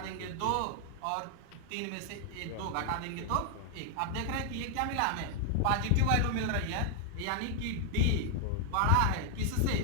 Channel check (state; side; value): different; both; correlation 0.00